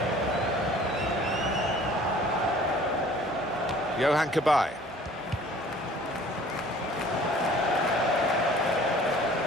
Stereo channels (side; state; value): both; normal; correlation 0.51